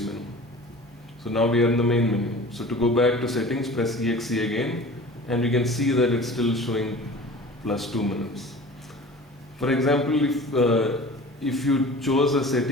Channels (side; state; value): both; normal; correlation 0.41